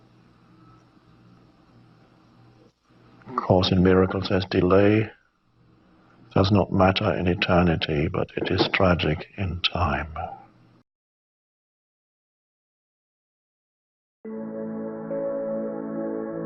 Course in Miracles says delay does not matter in eternity, but it is tragic in time.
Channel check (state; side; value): identical; both; correlation 1.00